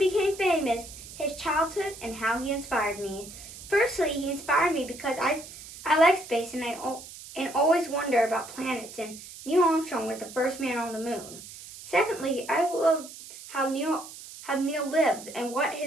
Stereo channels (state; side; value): noise; right; hiss, 15 dB below the sound